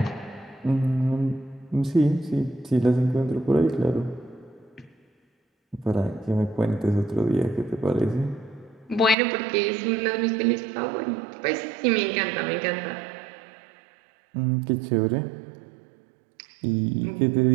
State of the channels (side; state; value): left; drops out; at 9.2 s